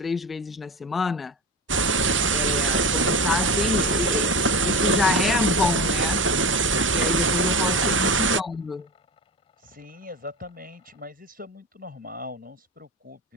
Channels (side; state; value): both; normal; correlation 0.26